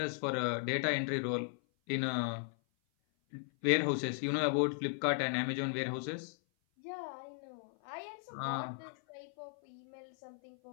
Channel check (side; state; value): right; silent; 53 dB below the other